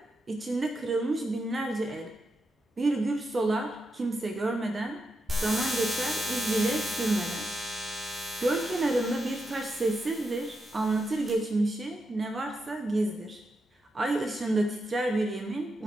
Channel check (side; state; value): both; normal; correlation 0.85